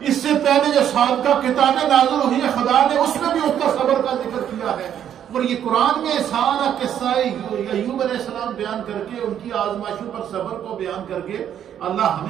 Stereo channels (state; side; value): quieter; left; 9.8 dB